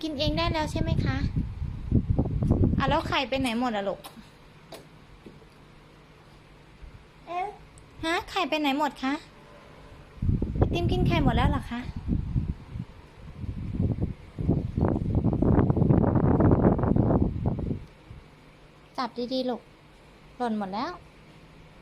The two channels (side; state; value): both; identical; correlation 1.00